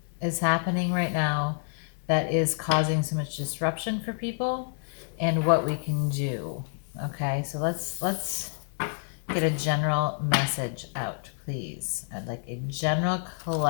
is happening right now that is causing so much disruption for people and what we can do. Okay, so let's get a general message out, please. I'd like a general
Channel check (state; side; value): silent; right; digital silence